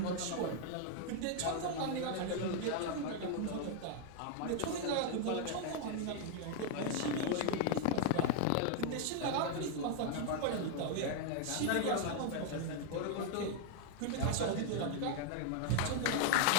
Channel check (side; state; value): both; different; correlation 0.00